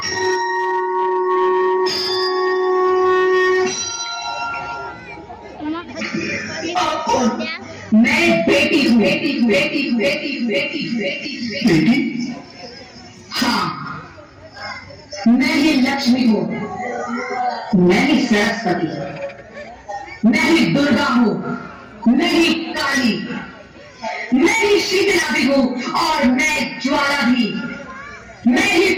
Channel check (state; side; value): identical; both; correlation 1.00